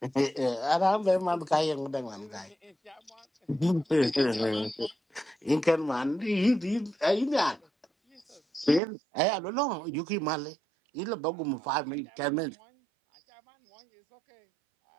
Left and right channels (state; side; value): drops out; left; at 8.8 s